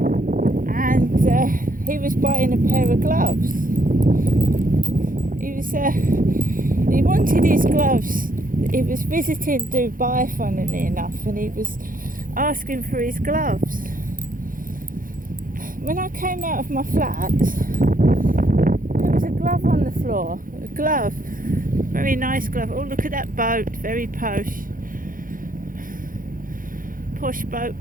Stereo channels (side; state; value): left; late; 0.40 ms